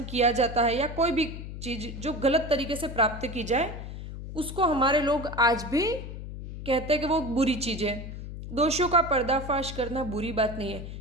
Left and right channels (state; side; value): noise; left; hum, 9 dB below the sound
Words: किया जाता है या कोई भी चीज जो गलत तरीके से प्राप्त की जाए उसको हमारे लोग आज भी कहते हैं कि वो बुरी चीज है। दोषों का पर्दाफाश करना बुरी बात नहीं है,